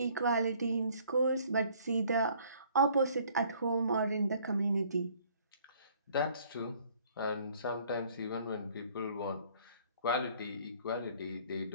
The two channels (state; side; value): inverted; both; correlation -0.58